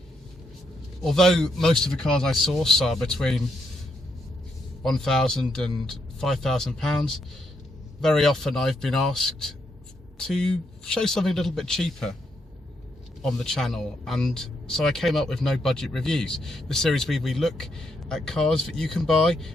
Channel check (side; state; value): both; normal; correlation 0.78